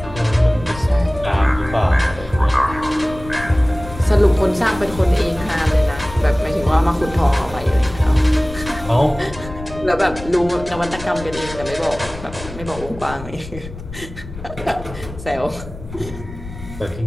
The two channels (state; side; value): noise; left; rumble, 13 dB below the sound